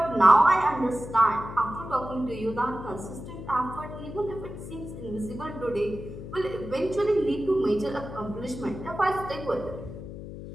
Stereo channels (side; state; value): left; noise; hum, 11 dB below the sound